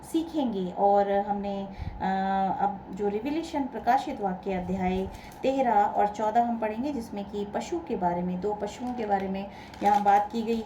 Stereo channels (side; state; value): both; identical; correlation 1.00